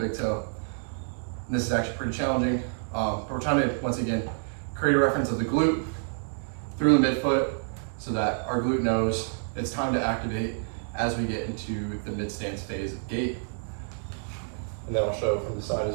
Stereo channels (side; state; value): left; silent; 59 dB below the other